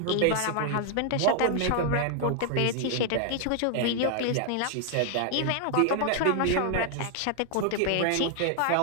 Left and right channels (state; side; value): different; both; correlation 0.00